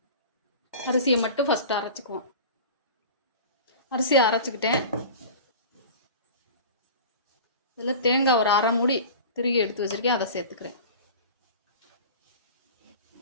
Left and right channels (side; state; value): both; inverted; correlation -0.36